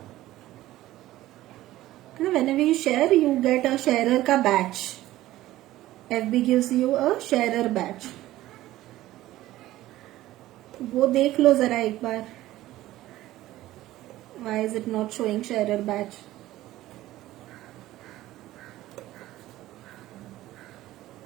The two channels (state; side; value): quieter; left; 15.6 dB